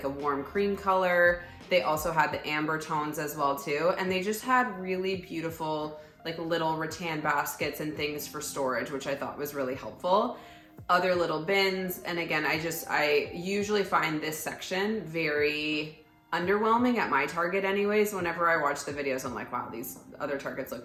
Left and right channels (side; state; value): both; identical; correlation 1.00